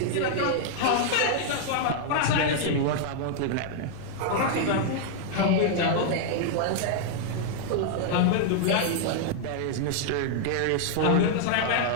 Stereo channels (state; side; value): different; both; correlation -0.01